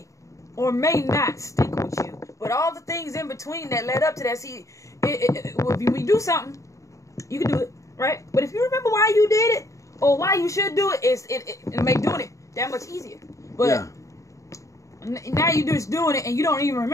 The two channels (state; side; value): late; right; 0.15 ms